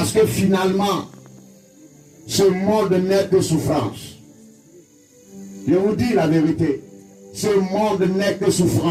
que finalement, ce monde n'est que souffrance. Je vous dis la vérité. Ce monde n'est que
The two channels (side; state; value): both; identical; correlation 1.00